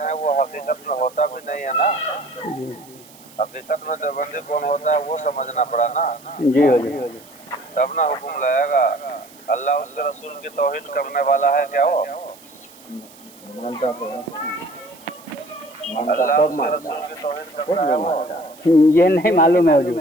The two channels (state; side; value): noise; right; hiss, 23 dB below the sound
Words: वो हकीकत में होता भी नहीं है ना। हकीकत में देवबंदी कौन होता है वो समझना पड़ा ना। जी हुजूर तब ना हुक्म लाएगा। अल्लाह उसके रसूल की तौहीद करने वाला है क्या वो? अल्लाह उसके रसूल की तौहीद करता है वो? ये नहीं मालूम है हुजूर।